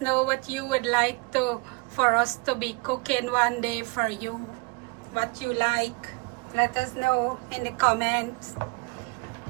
know what you would like for us to be cooking one day for you. What you like. Let us know in the comments.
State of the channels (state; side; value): quieter; left; 27.8 dB